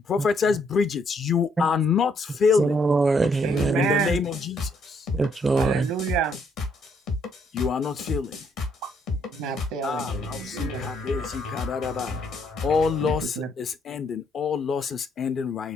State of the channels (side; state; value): both; normal; correlation 0.71